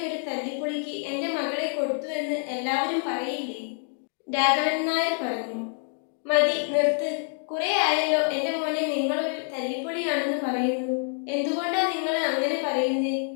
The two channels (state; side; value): silent; right; 56 dB below the other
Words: ഒരു തല്ലിപ്പൊളിക്ക് എൻ്റെ മകളെ കൊടുത്തു എന്ന് എല്ലാവരും പറയില്ലേ? രാഘവൻ നായർ പറഞ്ഞു. മതി, നിർത്ത്. കുറെ ആയല്ലോ എൻ്റെ മോനെ നിങ്ങളൊരു തല്ലിപ്പൊളിയാണെന്ന് പറയുന്നു. എന്തുകൊണ്ടാ നിങ്ങൾ അങ്ങനെ പറയുന്നേ?